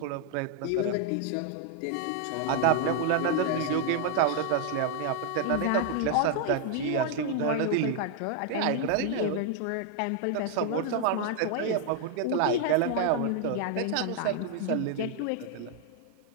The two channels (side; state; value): both; different; correlation 0.00